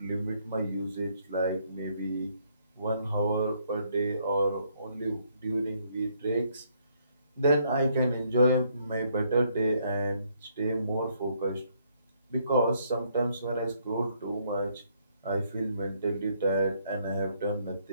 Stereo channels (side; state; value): both; inverted; correlation -0.70